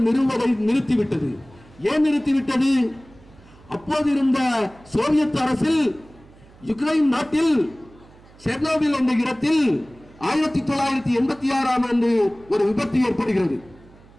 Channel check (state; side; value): noise; right; hum, 25 dB below the sound